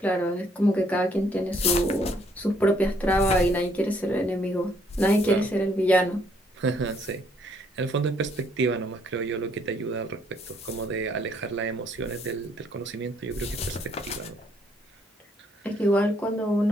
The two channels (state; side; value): normal; both; correlation 0.67